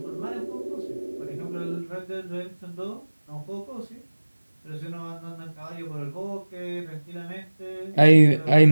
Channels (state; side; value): inverted; both; correlation -1.00